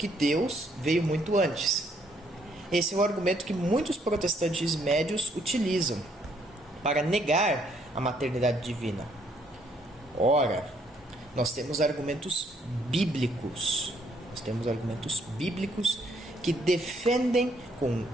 Deus veio muito antes. Esse é um argumento que muitos protestantes médios utilizam para negar a maternidade divina. Ora, nós temos argumentos bíblicos. Que defendem com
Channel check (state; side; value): normal; both; correlation 0.69